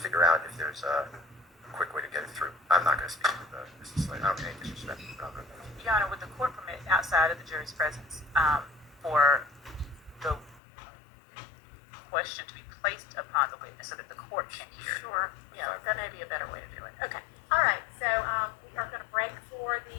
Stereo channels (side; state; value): right; drops out; at 10.6 s